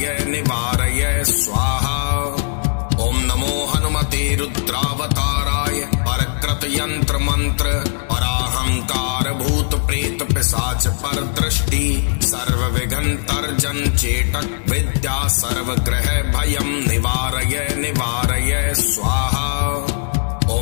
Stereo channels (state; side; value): silent; right; digital silence